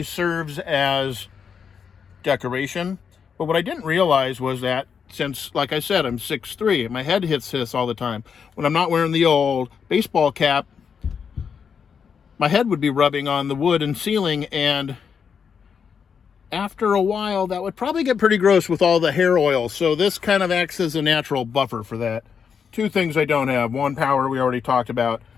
serves as decoration, but what I didn't realize was that since, like I said, I'm 6'3", my head hits this all the time. When I'm not wearing the old baseball cap, my head would be rubbing on the wood and ceiling, and after a while, that would probably get pretty gross with all the hair oil. So this kind of acts as a natural buffer for that. Two things I don't have. One, power, we already talked about.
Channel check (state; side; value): quieter; right; 6.7 dB